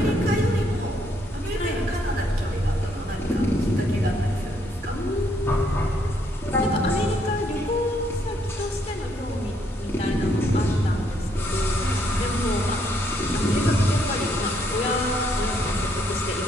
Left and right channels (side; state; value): both; normal; correlation 0.72